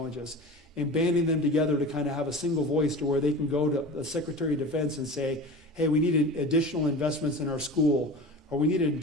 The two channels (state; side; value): normal; both; correlation 0.33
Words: And banding them together to kind of have a single voice to where they can go to the Secretary of Defense and say, hey, we need additional investments in our school, or we need an